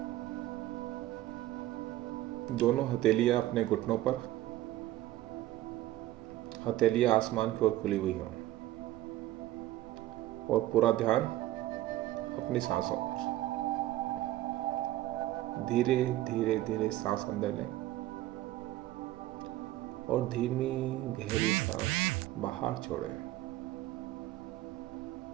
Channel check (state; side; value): quieter; left; 15.3 dB